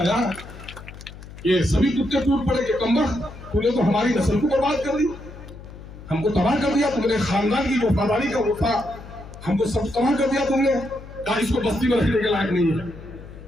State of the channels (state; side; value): noise; left; hum, 16 dB below the sound